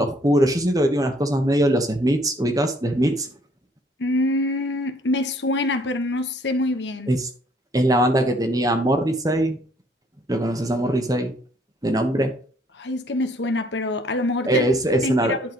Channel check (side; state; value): both; normal; correlation 0.63